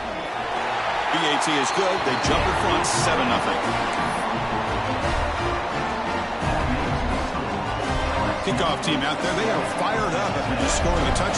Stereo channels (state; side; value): identical; both; correlation 1.00